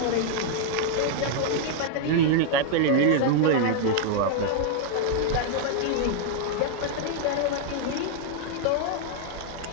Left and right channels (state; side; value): different; both; correlation -0.01